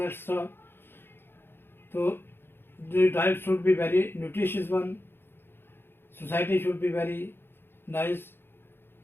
stuff. So the diet should be very nutritious one, society should be very nice,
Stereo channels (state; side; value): late; right; 0.10 ms